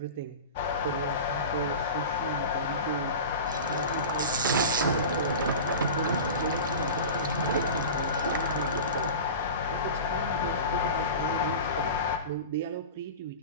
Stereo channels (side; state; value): both; inverted; correlation -0.31